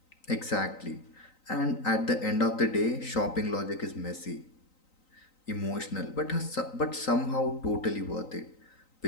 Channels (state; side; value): late; right; 3.9 ms